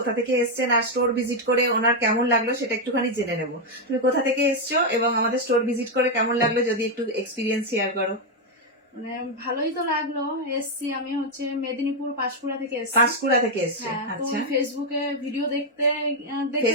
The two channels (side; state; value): both; normal; correlation 0.01